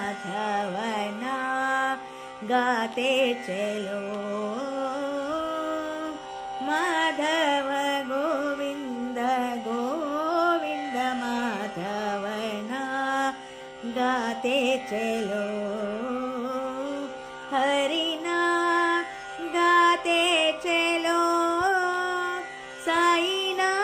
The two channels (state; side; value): identical; both; correlation 1.00